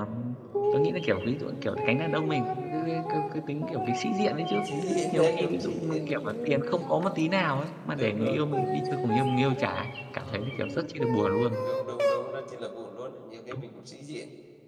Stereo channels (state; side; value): identical; both; correlation 1.00